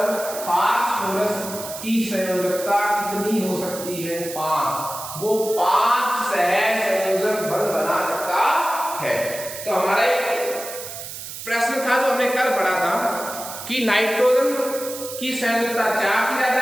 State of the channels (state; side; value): noise; right; hiss, 10 dB below the sound